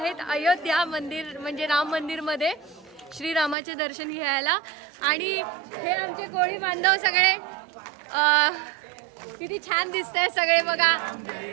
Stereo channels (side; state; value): left; drops out; at 3.6 s